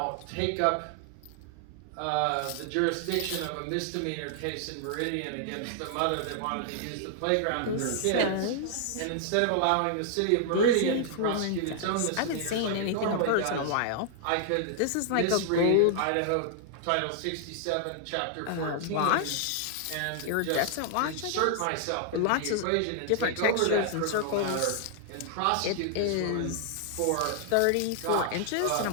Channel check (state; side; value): different; both; correlation -0.01